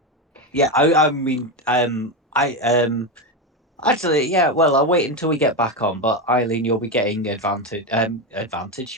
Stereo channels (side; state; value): both; normal; correlation 0.13